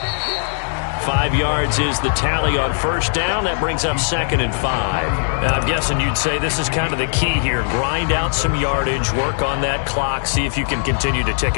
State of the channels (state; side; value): silent; right; digital silence